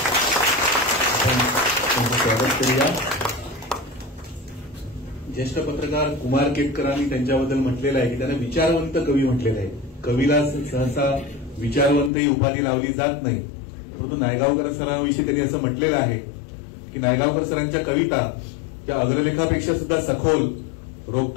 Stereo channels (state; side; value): drops out; right; at 12.1 s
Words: आपण त्यांचं स्वागत करूया. ज्येष्ठ पत्रकार कुमार केतकरांनी त्यांच्याबद्दल म्हटलेलं आहे की त्यांना विचारवंत कवी म्हटलेलं आहे. कवीला सहसा विचारवंत ही उपाधी लावली जात नाही, परंतु नायगावकर सरांविषयी त्यांनी असं म्हटलेलं आहे की नायगावकर सरांच्या कविता त्या अग्रलेखापेक्षा सुद्धा सखोल,